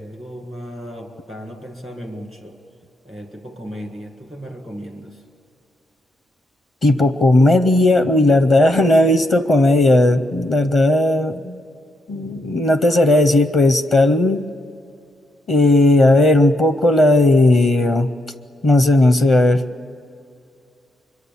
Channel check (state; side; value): normal; both; correlation 0.79